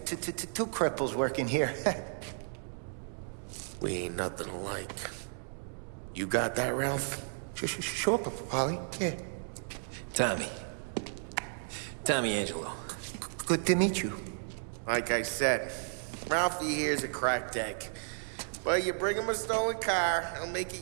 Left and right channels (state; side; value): silent; left; digital silence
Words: working here. We ain't nothing alike. You got that, Ralph? Sure, Paulie. Yeah. Tommy Angelo. Good to meet you. Like I said, Ralphie here's a cracked egg. But you bring him a stolen car, he'll make